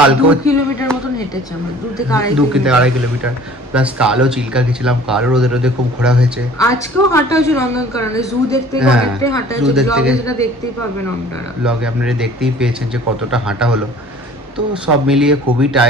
2 কিলোমিটার মতন হেঁটেছি আমরা, 2 থেকে 2.5 কিলোমিটার, প্লাস কালও চিল্কা গেছিলাম, কালও রোদে রোদে খুব ঘোরা হয়েছে। আজকেও হাঁটা হয়েছে নন্দনকাননে, জু দেখতে গিয়ে হ্যাঁ, অনেকটাই হাঁটা zoo হয়েছে, দেখতে ব্লগে গিয়ে- যেটা দেখতেই পাবেন আপনারা। ব্লগে আপনারা দেখতেই পেয়েছেন যে কতটা হাঁটা হলো। তো সব মিলিয়ে খুবই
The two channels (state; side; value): normal; both; correlation 0.49